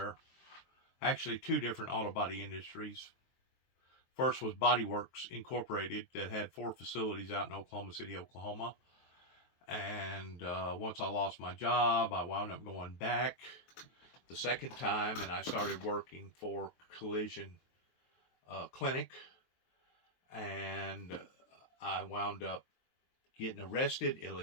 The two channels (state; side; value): late; right; 23 ms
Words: actually two different auto body industries. First was Body Works Incorporated that had 4 facilities out in Oklahoma City, Oklahoma. And once I lost my job, I wound up going back the second time, and I started working for Collision Clinic. And I wound up getting arrested